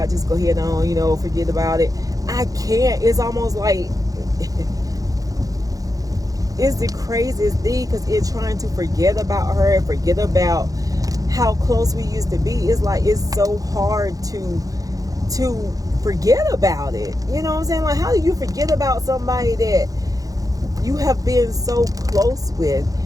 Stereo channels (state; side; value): late; left; 0.17 ms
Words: it, just go ahead on, you know, forget about it. I can't. It's almost like it's the craziest thing, because in trying to forget about her and forget about how close we used to be, it's like it's so hard to forget about it. You know what I'm saying? Like, how do you forget about somebody that you have been so close with?